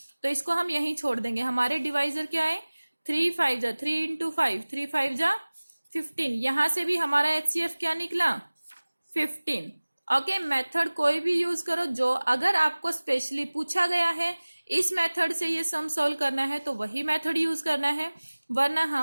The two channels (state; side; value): inverted; both; correlation -1.00